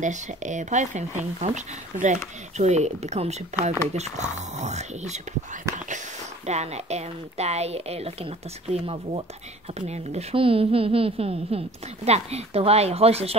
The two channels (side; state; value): both; normal; correlation 0.47